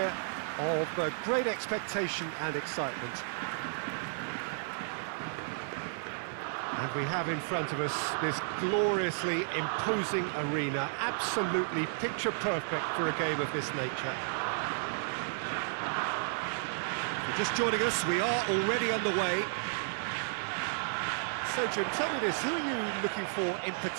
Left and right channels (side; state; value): left; silent; 56 dB below the other